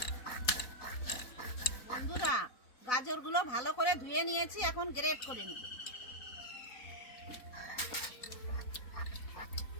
বন্ধুরা, গাজরগুলো ভালো করে ধুয়ে নিয়েছি, এখন গ্রেট করে নেব।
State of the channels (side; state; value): right; late; 4.1 ms